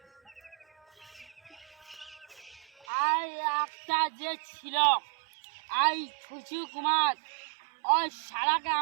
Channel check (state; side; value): drops out; left; at 2.9 s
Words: আই একটা যে ছিল আই ছুচু কুমার ওই শালাকে